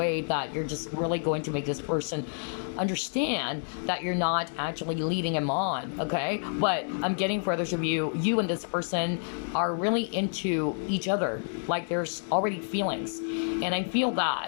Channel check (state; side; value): silent; right; digital silence